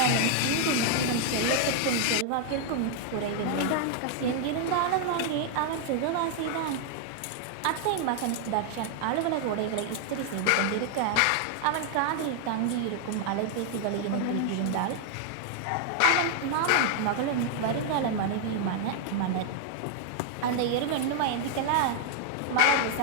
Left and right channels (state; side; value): different; both; correlation 0.00